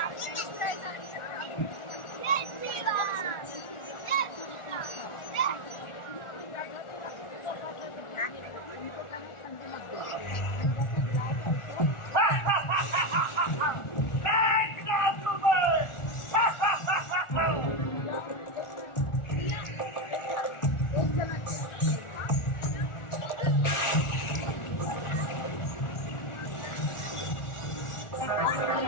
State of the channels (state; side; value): late; right; 1.4 ms